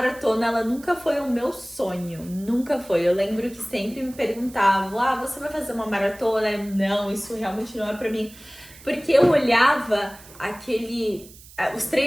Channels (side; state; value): right; noise; hiss, 21 dB below the sound